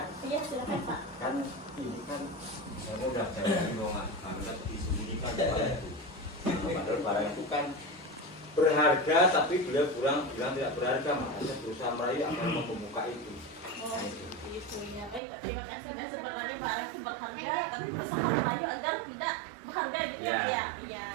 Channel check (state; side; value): drops out; left; at 15.2 s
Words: Iya silakan Pak. kan ini kan mudah saya bilang karena disembunyikan barang itu. Padahal barang itu kan berharga tapi beliau bilang tidak berharga, makanya berusaha merayu agar membuka itu. Oh, gitu ya. Baik Pak, terima kasih. Dan sebenarnya barang itu berharga, tapi berusaha merayu agar tidak berharga gitu ya. Ya. Iya.